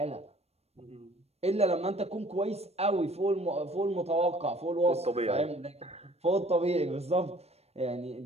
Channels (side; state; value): left; late; 0.30 ms